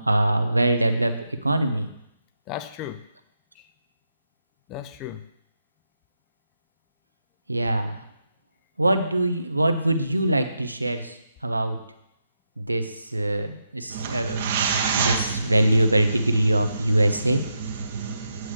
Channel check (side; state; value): both; inverted; correlation -0.84